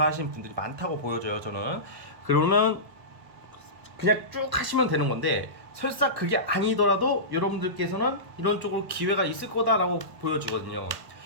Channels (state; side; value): late; left; 1.0 ms